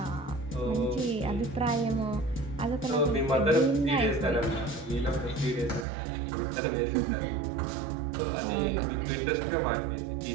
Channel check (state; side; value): drops out; left; at 5.9 s